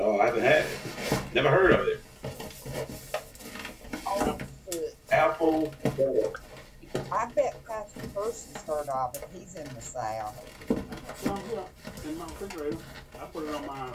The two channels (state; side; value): identical; both; correlation 1.00